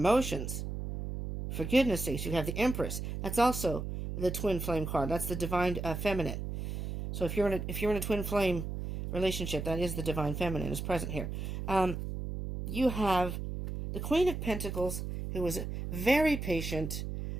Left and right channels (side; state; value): right; noise; hum, 5 dB below the sound